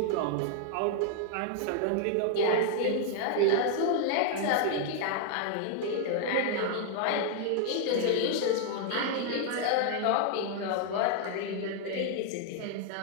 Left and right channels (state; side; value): different; both; correlation 0.00